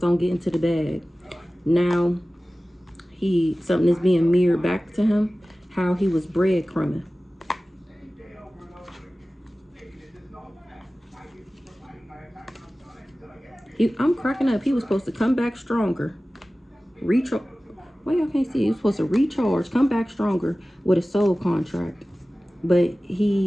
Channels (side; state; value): both; normal; correlation 0.97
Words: on getting to the bag. Now, something is being mirrored back to him, how he was breadcrumbing. I'm cracking up. He was supposed to come back stronger. Recharge. Well, y'all can't see. He was supposed to recharge, come back stronger with a soul contract. But